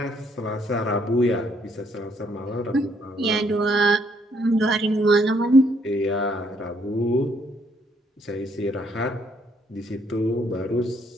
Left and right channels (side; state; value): both; normal; correlation 0.69